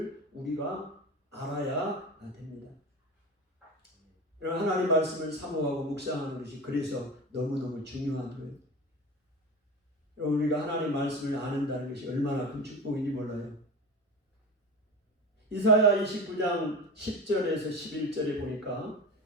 우리가 알아야 됩니다. 하나님 말씀을 사모하고 묵상하는 것이 그래서 너무너무 중요한 거예요. 우리가 하나님 말씀을 아는다는 것이 얼마나 큰 축복인지 몰라요. 이사야 29장 10절에서 11절에 보니까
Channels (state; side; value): normal; both; correlation 0.29